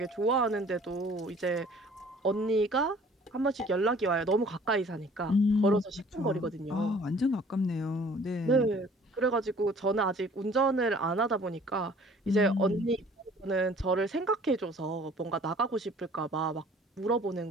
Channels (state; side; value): normal; both; correlation 0.52